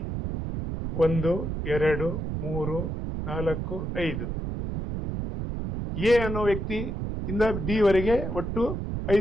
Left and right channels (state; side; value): noise; right; rumble, 4 dB below the sound